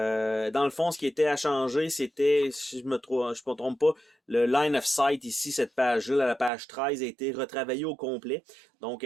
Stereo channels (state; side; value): drops out; left; at 6.5 s